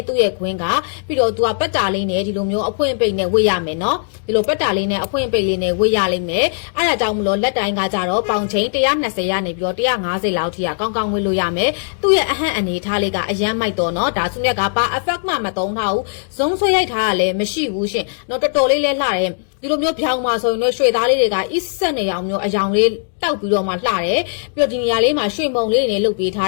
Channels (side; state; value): right; silent; digital silence